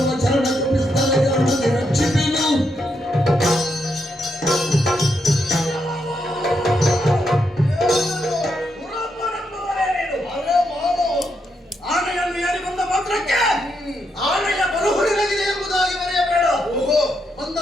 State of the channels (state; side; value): normal; both; correlation 0.80